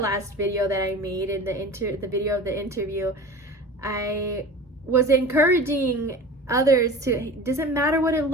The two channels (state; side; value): normal; both; correlation 0.35